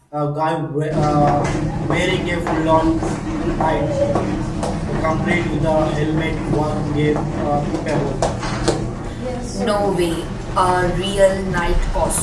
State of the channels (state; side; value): identical; both; correlation 1.00